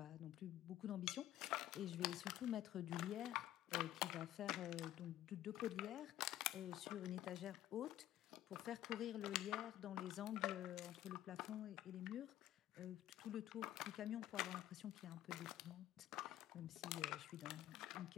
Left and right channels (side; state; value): right; quieter; 13.0 dB